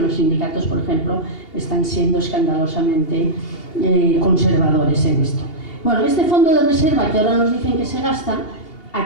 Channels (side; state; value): right; late; 2.8 ms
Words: sindicatos, por ejemplo, están siendo escandalosamente conservadores en esto. Bueno, este fondo de reserva que ahora nos dicen que se gasta,